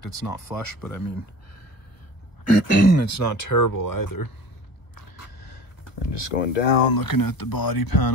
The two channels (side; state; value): right; late; 1.1 ms